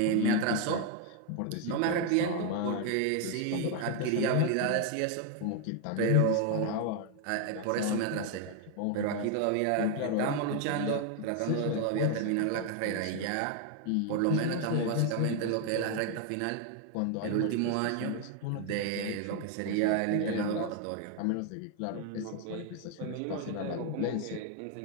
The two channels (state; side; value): different; both; correlation 0.00